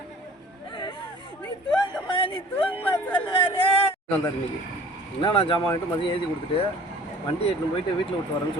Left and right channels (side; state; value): both; normal; correlation 0.48